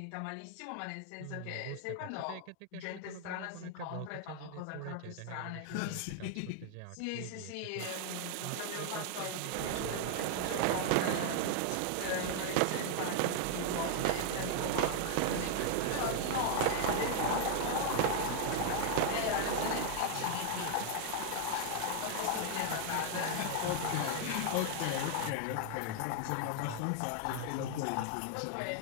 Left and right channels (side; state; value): both; different; correlation 0.00